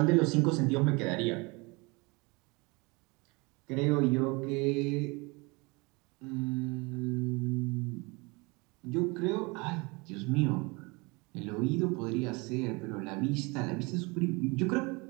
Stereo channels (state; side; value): quieter; left; 27.2 dB